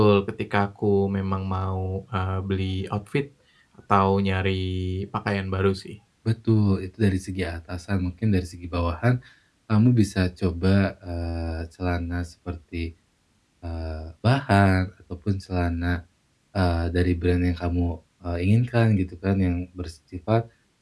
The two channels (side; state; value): both; identical; correlation 1.00